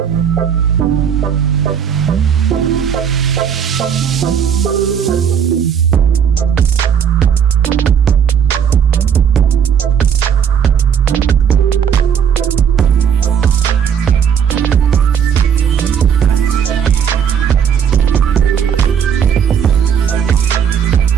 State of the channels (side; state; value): left; quieter; 7.8 dB